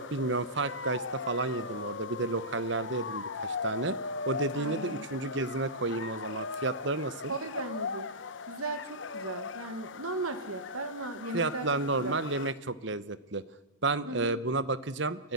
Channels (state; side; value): normal; both; correlation -0.16